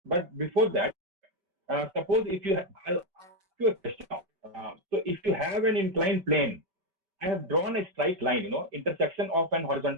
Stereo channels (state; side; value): late; left; 5.2 ms